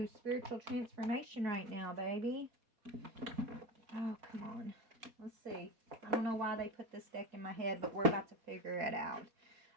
spiritual transformation right now, baby. Oh, come on. Let's see. I don't know why they put this deck in my head, but we're about to figure it out.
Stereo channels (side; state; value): left; late; 4.2 ms